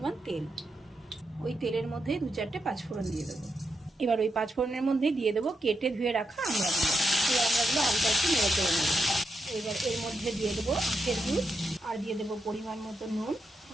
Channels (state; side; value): normal; both; correlation 0.84